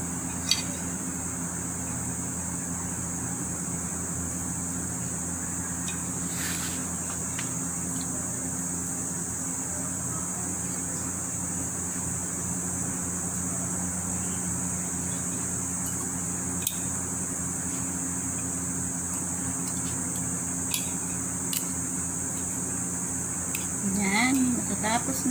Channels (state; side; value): noise; left; hiss, 13 dB below the sound